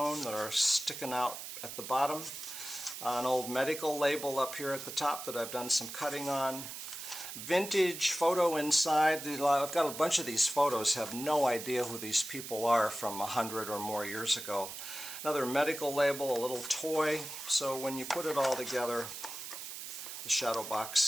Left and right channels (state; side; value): noise; right; hiss, 9 dB below the sound